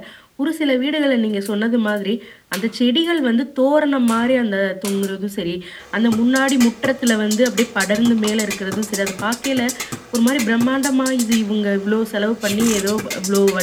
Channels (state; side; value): identical; both; correlation 1.00